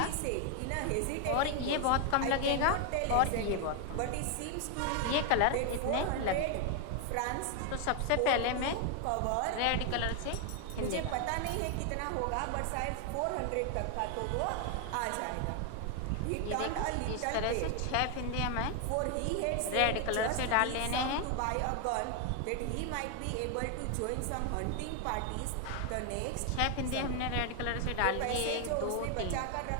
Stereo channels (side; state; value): both; different; correlation 0.00